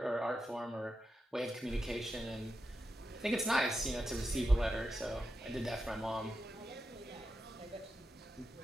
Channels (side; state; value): both; normal; correlation 0.88